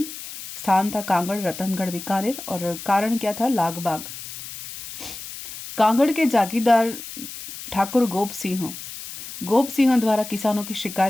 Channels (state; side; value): noise; left; hiss, 11 dB below the sound